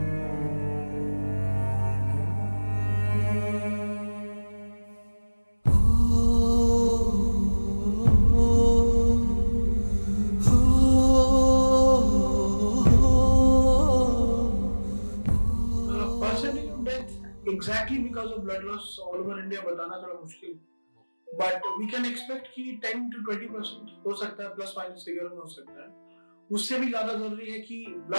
Exactly because of blood loss all over India बताना थोड़ा मुश्किल, but we can expect कि 10 to 20% हो सकता है, प्लस माइनस फिगर में हो सकता है। उससे भी ज्यादा जरूरी है कि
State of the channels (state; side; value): inverted; both; correlation -1.00